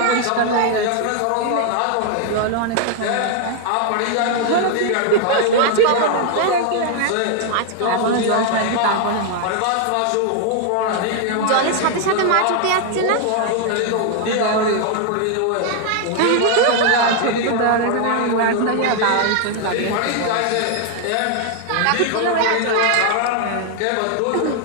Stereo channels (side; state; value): both; different; correlation 0.00